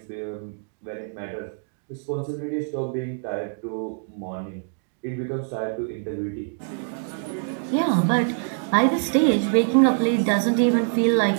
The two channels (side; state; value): left; silent; digital silence